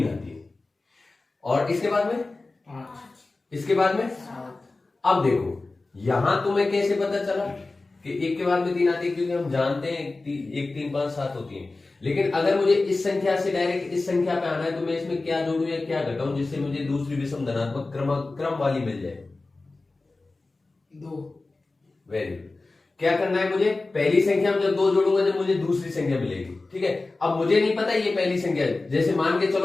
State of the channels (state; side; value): quieter; right; 3.4 dB